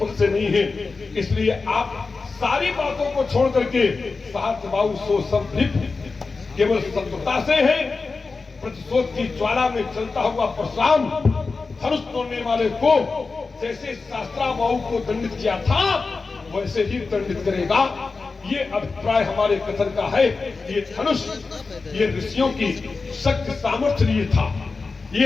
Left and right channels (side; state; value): right; quieter; 4.2 dB